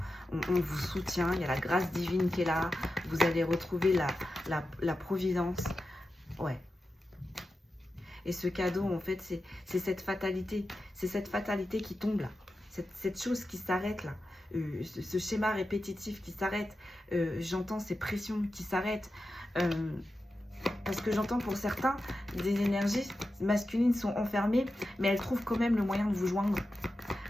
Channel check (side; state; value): both; normal; correlation 0.91